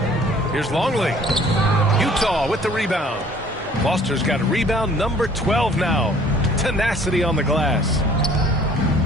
Here's Longley. Utah with the rebound. Foster's got a rebound number 12 now. Tenacity on the glass.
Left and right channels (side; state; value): both; normal; correlation 0.55